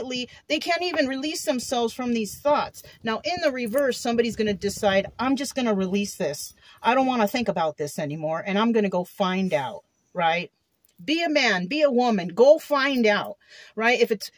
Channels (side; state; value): both; identical; correlation 1.00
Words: they can't even release themselves from these thoughts. Now, in the reverse, somebody's going to decide, I'm just going to release this. I don't want to think about this anymore, and I'm going to go find out, right? Be a man, be a woman, go find out, right? If